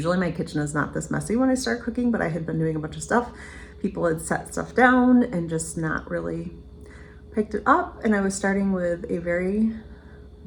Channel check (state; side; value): identical; both; correlation 1.00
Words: my kitchen is not this messy when I start cooking, but I had been doing a bunch of stuff. People had set stuff down and just not really picked it up, and I was starting with a very